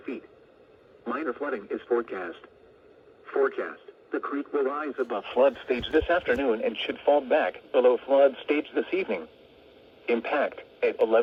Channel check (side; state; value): both; identical; correlation 1.00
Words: feet. Minor flooding is forecast. The creek will rise above flood stage this afternoon and should fall back below flood stage this evening. Impact at